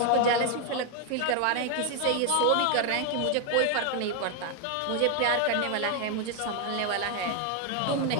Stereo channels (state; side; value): different; both; correlation 0.01